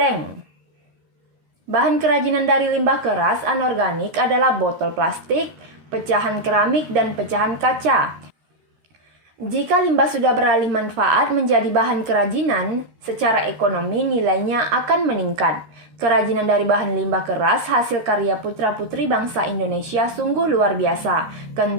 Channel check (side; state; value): left; late; 13 ms